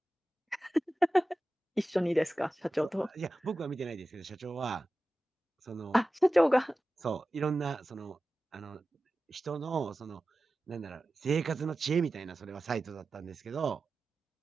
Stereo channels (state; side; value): normal; both; correlation 0.95